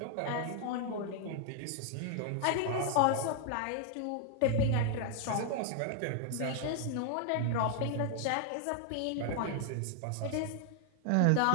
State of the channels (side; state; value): both; different; correlation 0.00